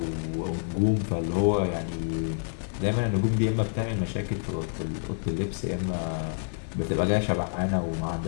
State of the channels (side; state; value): right; silent; digital silence